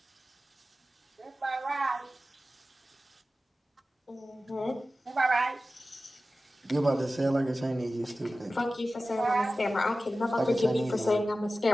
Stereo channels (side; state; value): both; normal; correlation 0.95